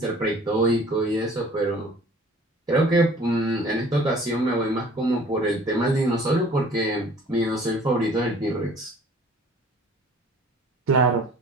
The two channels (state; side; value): normal; both; correlation 0.51